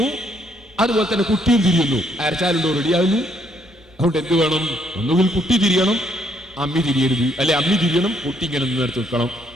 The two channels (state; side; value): normal; both; correlation 0.70